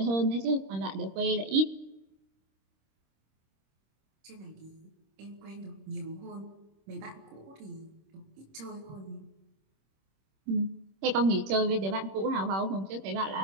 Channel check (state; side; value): late; left; 26 ms